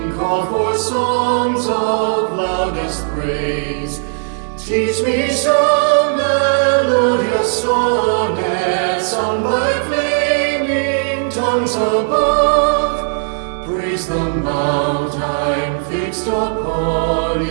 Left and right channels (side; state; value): left; silent; digital silence